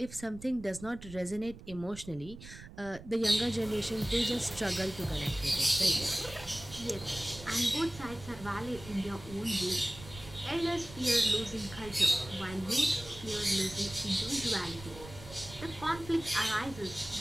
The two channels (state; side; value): noise; right; rumble, 15 dB below the sound